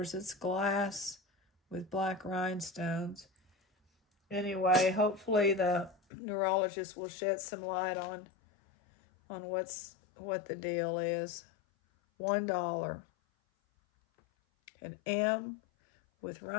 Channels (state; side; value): drops out; right; at 6.0 s